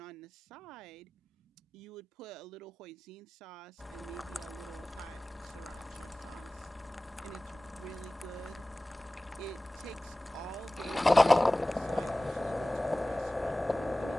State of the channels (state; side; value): normal; both; correlation 0.98